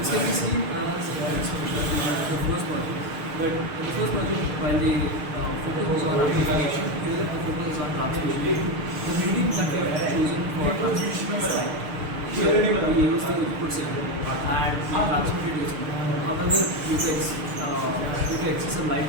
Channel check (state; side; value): late; left; 6.6 ms